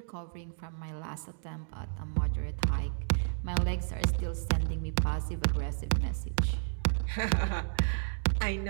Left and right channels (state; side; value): silent; left; digital silence